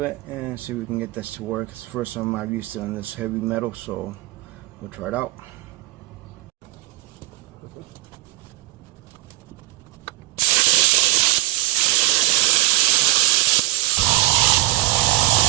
and see if we can get this to work. It's the first time I've used it on this heavy metal, so we'll try it out.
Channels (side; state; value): left; quieter; 18.3 dB